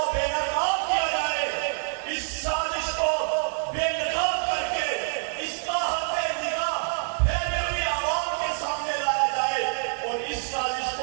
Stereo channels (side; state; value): left; silent; 57 dB below the other